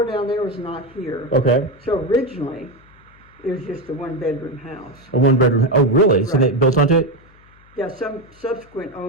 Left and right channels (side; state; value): left; noise; hum, 28 dB below the sound